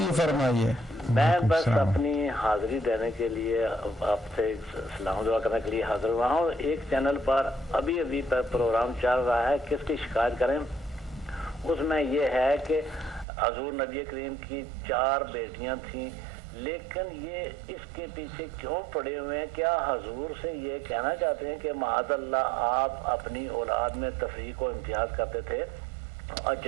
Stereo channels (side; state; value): left; drops out; at 13.2 s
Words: فرمائیے. میں بس اپنی حاضری دینے کے لیے آپ سے سلام دعا کرنے کے لیے حاضر ہوا ہوں. ایک چینل پر ابھی پروگرام چل رہا ہے کس کی شکایت کریں. اس میں یہ ہے کہ حضور نبی کریم کی 4 بیٹیاں تھیں لیکن یہ اس کے پیچھے کیوں پڑے ہوئے ہیں؟ کیا حضور سے یہ کہنا چاہتے ہیں کہ معاذ اللہ آپ اپنی اولاد میں تفریق و امتیاز کرتے تھے، اور